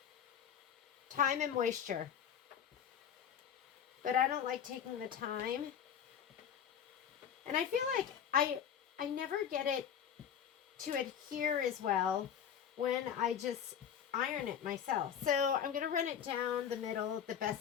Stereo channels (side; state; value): right; quieter; 8.6 dB